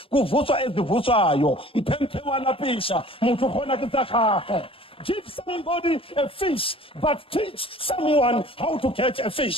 Kuvutswa ezivutsayo. Mpempe wanapisha. Muthu khona kitsakhakhe. Give somebody a fish, but teach someone how to catch a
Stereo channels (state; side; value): late; right; 0.26 ms